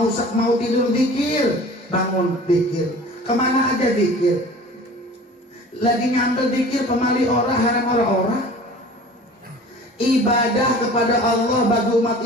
tidur zikir, bangun zikir, kemana aja zikir. Lagi nyambel zikir pemali orang, haram orang. Ibadah kepada Allah bagi umat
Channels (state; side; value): normal; both; correlation 0.43